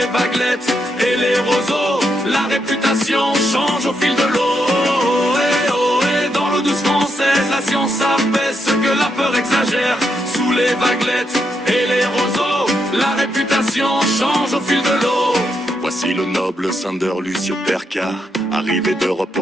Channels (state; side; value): normal; both; correlation 0.80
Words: vaguelettes et les roseaux, la réputation change au fil de l'eau. Ohé, dans l'eau douce française, la science abaisse ce que la peur exagère. Sous les vaguelettes et les roseaux, la réputation change au fil de l'eau. Voici le noble Sander Lucio Perca, arrivé d'Europe